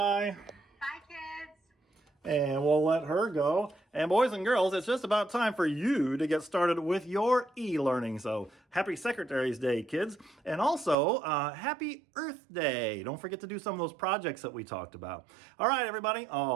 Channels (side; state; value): left; drops out; at 11.0 s